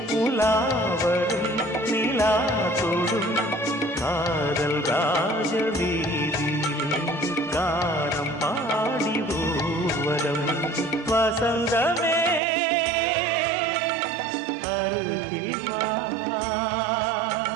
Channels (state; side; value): drops out; left; at 12.4 s